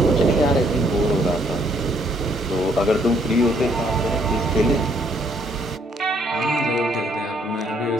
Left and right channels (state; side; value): normal; both; correlation 0.67